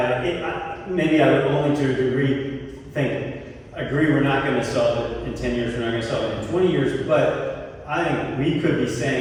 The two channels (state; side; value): identical; both; correlation 1.00